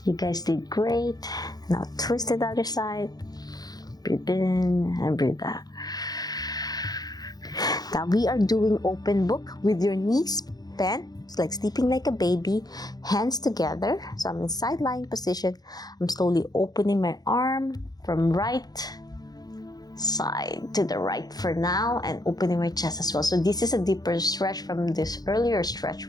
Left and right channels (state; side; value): late; right; 0.19 ms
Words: You guys did great. Now twist to the other side. Breathe in and breathe out. Now we are doing Opemn Book with your knees bent. It's like sleeping like a baby, hands together. So I'm in side lying position. I'm slowly opening my arm from right side to the right for now and opening my chest as well. So this is a deeper stretch from this earlier stretch